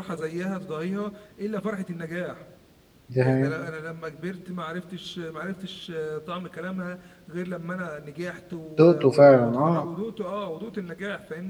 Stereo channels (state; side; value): identical; both; correlation 1.00